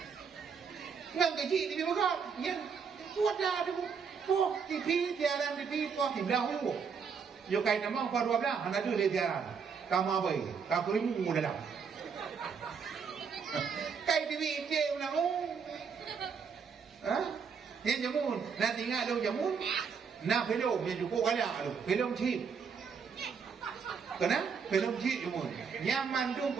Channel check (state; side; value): quieter; left; 6.2 dB